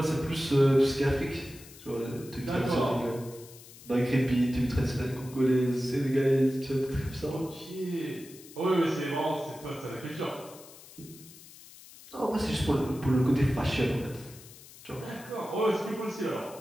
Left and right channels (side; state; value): left; noise; hiss, 19 dB below the sound